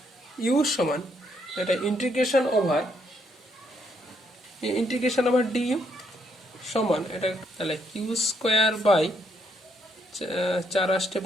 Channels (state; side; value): normal; both; correlation 0.73